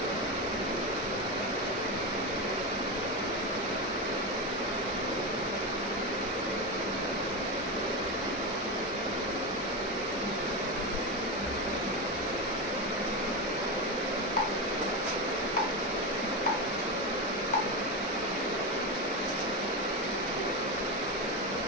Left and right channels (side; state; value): both; normal; correlation 0.15